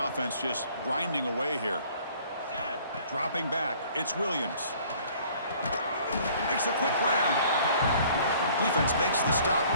offense just grinding away here. Dropping back. It's Williams. Makes a quick grab. Defense makes the stop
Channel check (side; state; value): both; inverted; correlation -0.55